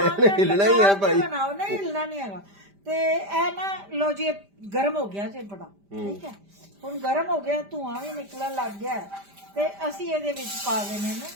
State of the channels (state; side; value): late; left; 5.0 ms